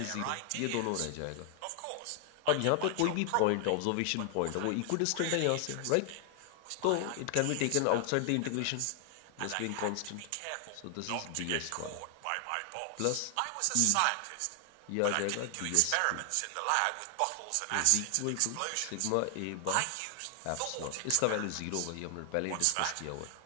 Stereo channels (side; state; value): both; different; correlation 0.00